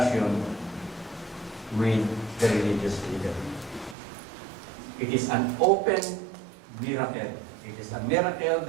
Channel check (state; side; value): drops out; left; at 4.0 s